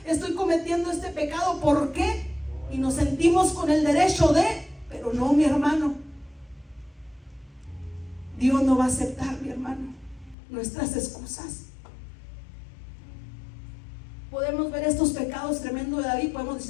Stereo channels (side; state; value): right; drops out; at 10.4 s